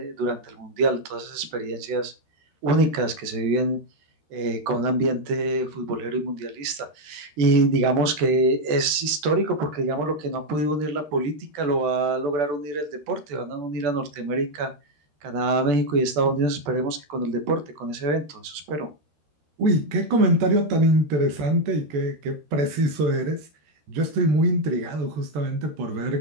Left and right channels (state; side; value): late; left; 14 ms